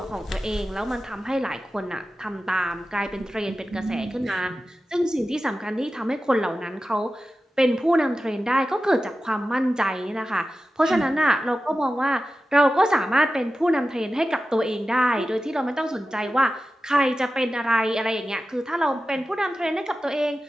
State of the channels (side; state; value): both; normal; correlation 0.94